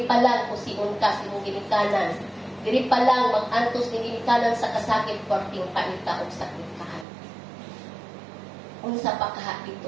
pa lang kusiun ka sa imong ginikanan. Diri pa lang mag-antos ning ginikanan sa kasakit perting paita og sakit kahan. Unsa pa kaha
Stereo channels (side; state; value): left; drops out; at 7.1 s